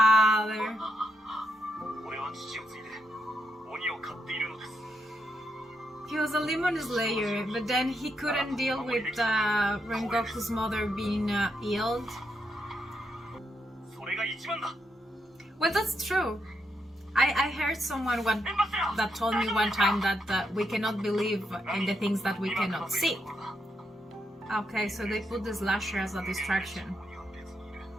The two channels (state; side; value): normal; both; correlation 0.81